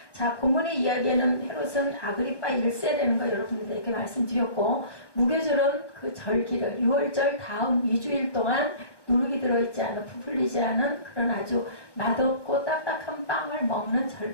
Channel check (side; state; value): right; late; 1.1 ms